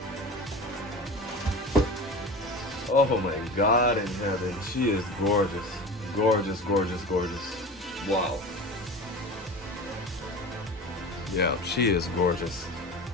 Oh my God in heaven, she is gorgeous. Gorgeous, gorgeous, gorgeous. Wow. Yeah, she is gorgeous.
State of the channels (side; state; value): both; normal; correlation 0.32